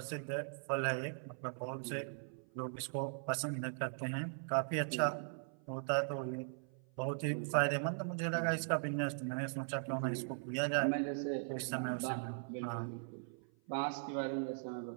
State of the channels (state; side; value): silent; left; 51 dB below the other